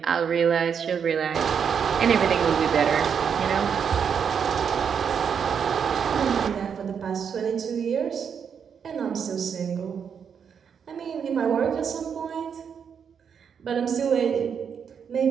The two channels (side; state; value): left; quieter; 7.2 dB